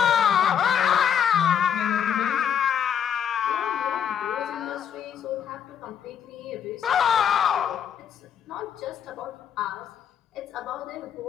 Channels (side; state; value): right; quieter; 8.4 dB